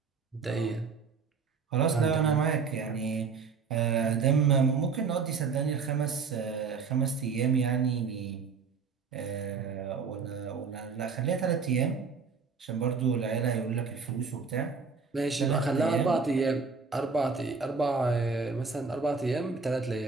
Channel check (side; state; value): left; quieter; 5.2 dB